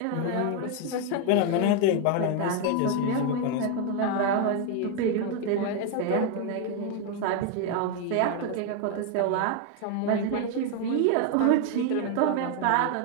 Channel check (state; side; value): different; both; correlation 0.01